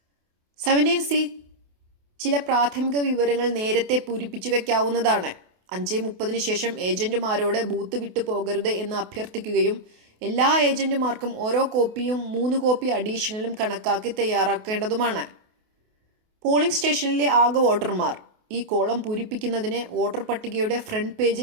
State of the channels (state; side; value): late; left; 28 ms